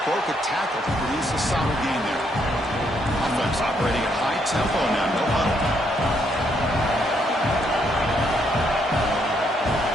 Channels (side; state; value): both; normal; correlation 0.74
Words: broke a tackle to produce a solid gain there. Offense operating at high tempo now. No huddle.